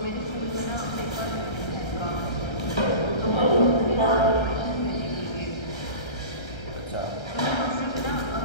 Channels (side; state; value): right; late; 1.3 ms